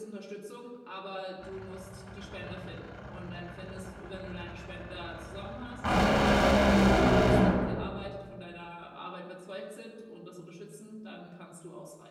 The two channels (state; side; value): identical; both; correlation 1.00